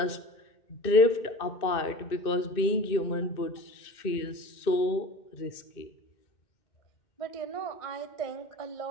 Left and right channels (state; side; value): late; right; 2.6 ms